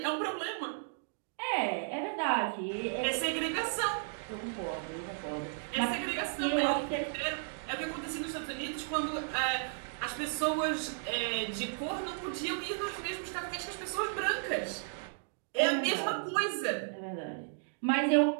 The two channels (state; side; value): silent; left; digital silence